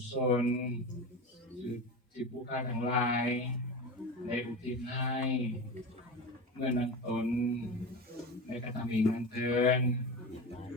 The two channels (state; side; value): normal; both; correlation 0.26